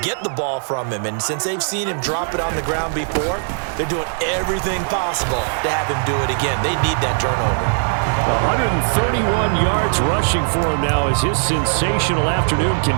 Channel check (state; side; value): silent; left; 66 dB below the other